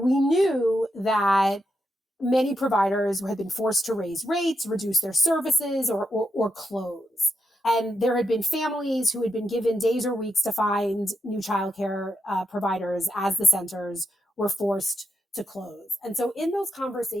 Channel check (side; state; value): both; normal; correlation 0.84